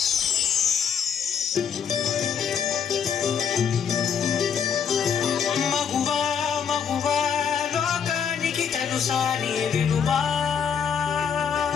మగువా మగువా లోకానికి తెలుసా నీ విలువా,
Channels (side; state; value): right; quieter; 7.3 dB